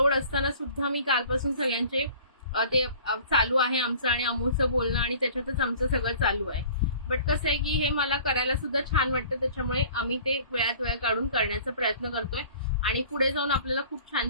असताना सुद्धा मी कालपासून सगळ्यांचे ते चालू आहे आमचं, आणि अमूचं बोलणं, आणि त्याच्यातच आमचं सगळं चालू आहे. बट कसं आहे की हे मला करायला सुद्धा छान वाटतं, त्याच्यामुळे आम्ही ते वेळात वेळ काढून करण्याचा प्रयत्न करतोय. आणि पुढे जाऊन आपल्याला खूप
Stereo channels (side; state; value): both; inverted; correlation -0.48